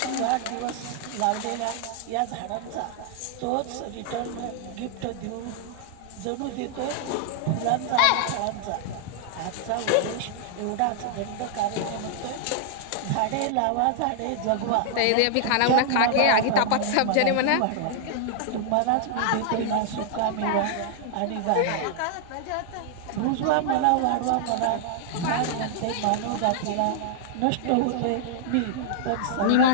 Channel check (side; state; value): both; different; correlation -0.01